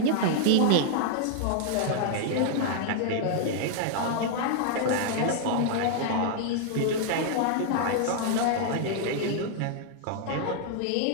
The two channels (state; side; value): different; both; correlation 0.00